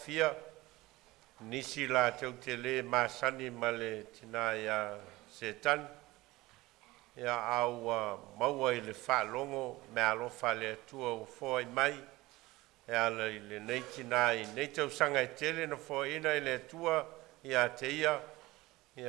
nisi la tau te le masani ma le tina ia Setani. Ia au maua i le whaalongo me alofa le atua o fōi mai. Ia le nei tina i nei tau sanga i tele na fōi ina i le atua ia te ia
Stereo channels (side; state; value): left; quieter; 19.6 dB